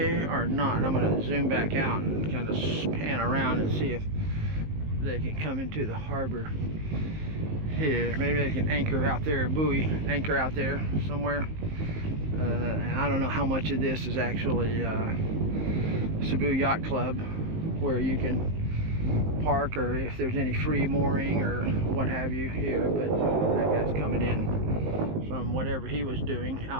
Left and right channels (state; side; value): late; left; 19 ms